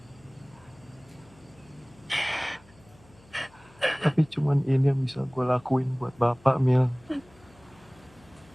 Tapi cuman ini yang bisa gue lakuin buat Bapak, Mil.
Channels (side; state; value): left; noise; hum, 27 dB below the sound